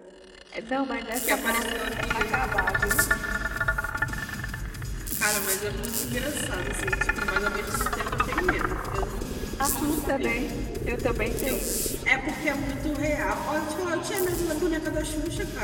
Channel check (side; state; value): both; identical; correlation 1.00